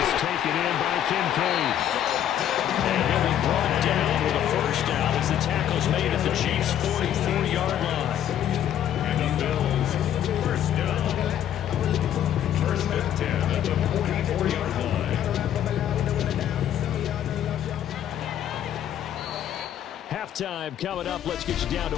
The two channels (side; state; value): right; quieter; 10.6 dB